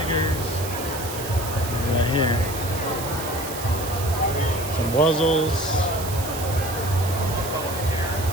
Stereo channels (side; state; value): right; noise; hiss, 9 dB below the sound